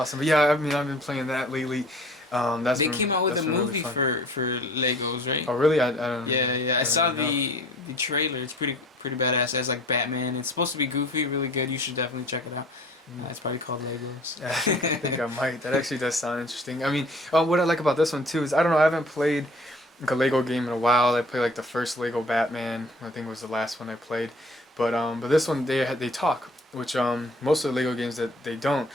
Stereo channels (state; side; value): normal; both; correlation 0.50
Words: But yeah, I mean I've been playing that lately. They came out with a movie for Legos, right? Oh really? I don't know. Yeah. I saw the trailer. It's pretty badass. It has like Batman. It's supposed to be goofy, really good. You should definitely check it out. It's probably called Legos. I think I might. That actually does sound interesting. I mean, what I like about this one too is I don't know. I haven't played like a Lego game in a while. I played like the first Lego Batman. I think was the last one I played. But this one they talk, which most of the Lego games that they don't.